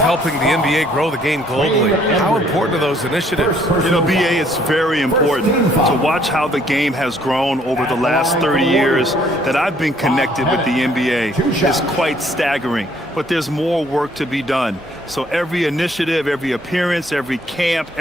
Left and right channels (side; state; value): both; normal; correlation 0.63